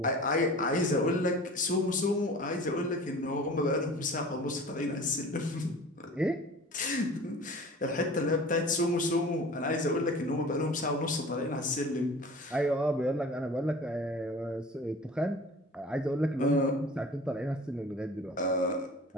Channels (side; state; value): both; normal; correlation 0.41